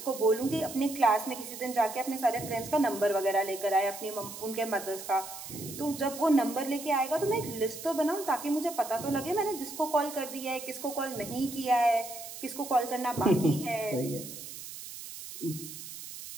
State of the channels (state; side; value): noise; right; hiss, 11 dB below the sound